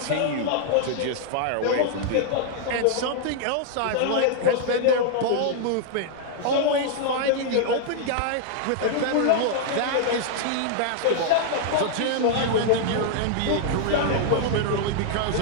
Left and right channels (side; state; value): both; different; correlation 0.00